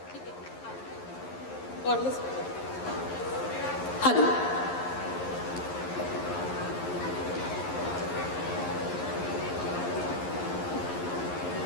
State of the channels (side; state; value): right; late; 11 ms